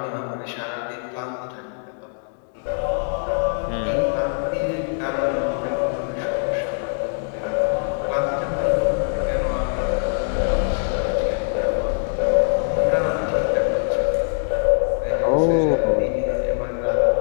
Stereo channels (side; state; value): right; silent; 64 dB below the other